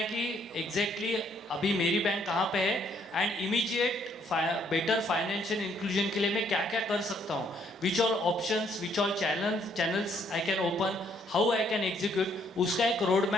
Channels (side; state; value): both; normal; correlation 0.68